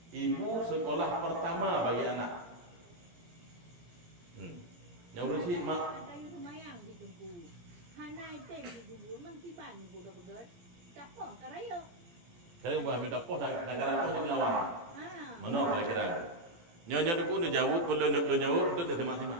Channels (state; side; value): late; left; 18 ms